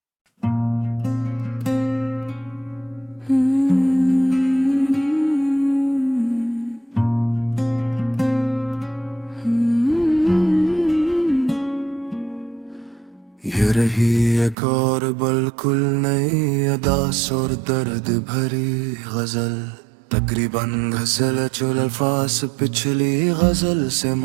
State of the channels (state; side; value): drops out; left; at 14.6 s